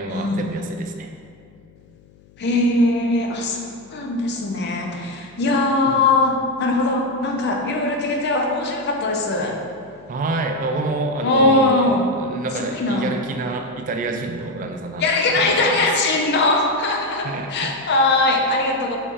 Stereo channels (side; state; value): left; noise; hum, 28 dB below the sound